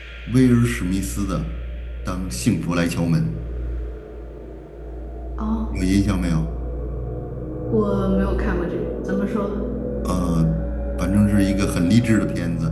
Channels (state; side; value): identical; both; correlation 1.00